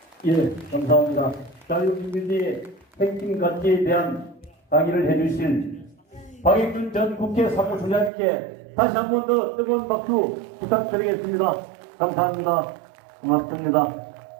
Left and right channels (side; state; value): left; drops out; at 8.1 s